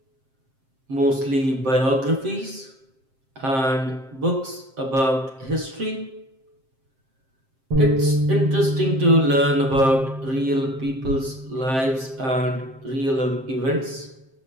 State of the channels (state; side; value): late; left; 7.6 ms